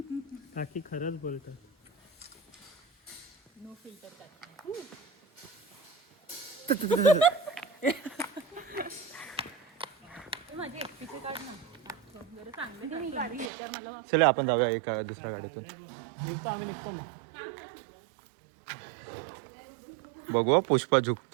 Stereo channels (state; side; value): drops out; left; at 13.5 s